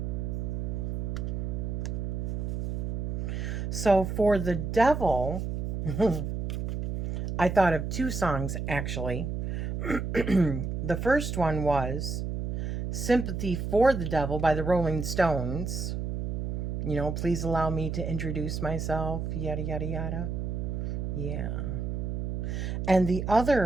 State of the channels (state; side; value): noise; right; hum, 3 dB below the sound